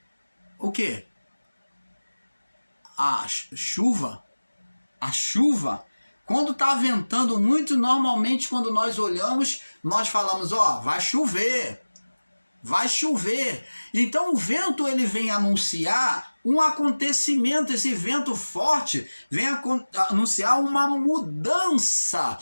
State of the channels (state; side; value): inverted; both; correlation -1.00